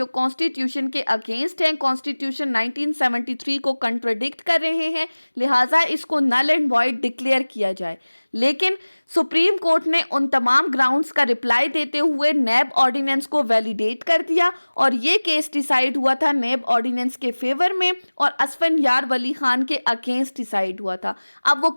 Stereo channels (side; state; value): both; inverted; correlation -1.00